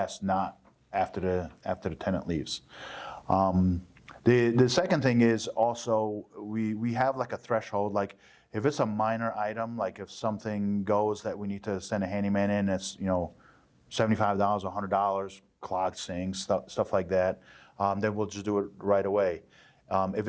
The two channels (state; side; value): identical; both; correlation 1.00